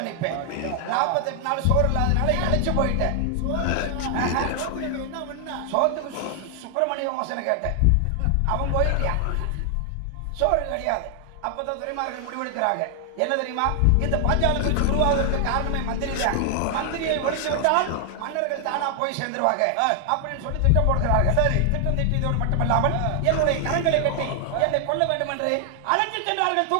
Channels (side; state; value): both; different; correlation 0.00